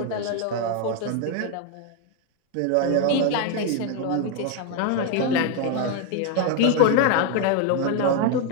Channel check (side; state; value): both; different; correlation 0.01